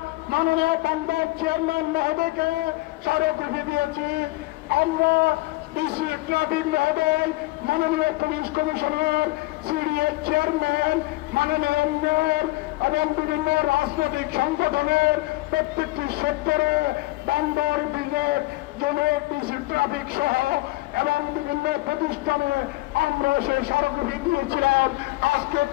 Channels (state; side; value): quieter; right; 20.7 dB